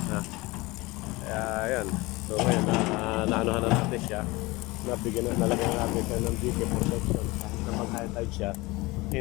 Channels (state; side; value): quieter; right; 22.3 dB